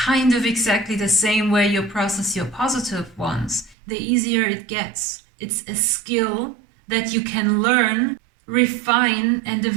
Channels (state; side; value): drops out; left; at 3.8 s